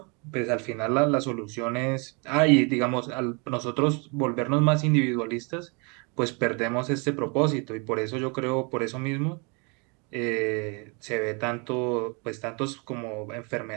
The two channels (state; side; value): quieter; left; 32.4 dB